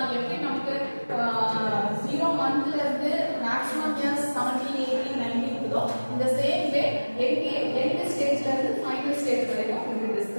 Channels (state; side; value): inverted; both; correlation -1.00